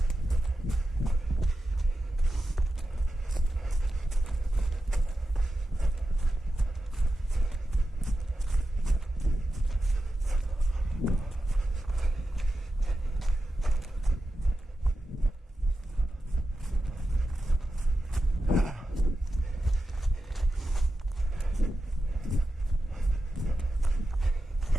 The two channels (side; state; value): both; normal; correlation 0.91